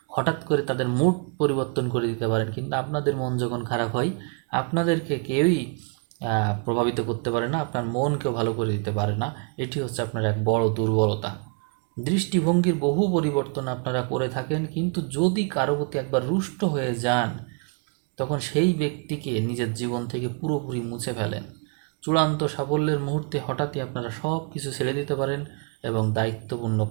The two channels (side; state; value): left; quieter; 36.3 dB